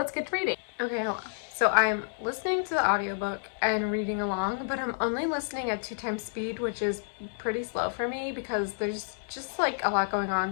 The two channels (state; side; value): silent; right; digital silence